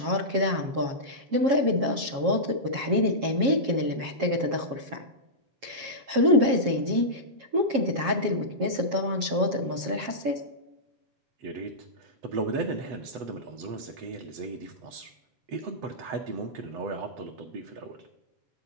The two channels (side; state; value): left; late; 7.4 ms